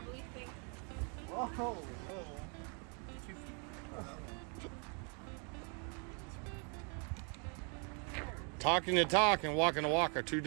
thing? Whoa. Talking the talk and walking the walk are two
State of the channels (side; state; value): left; quieter; 37.0 dB